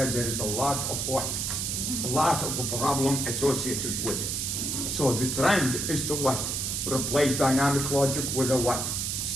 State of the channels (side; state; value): right; noise; hiss, 1 dB below the sound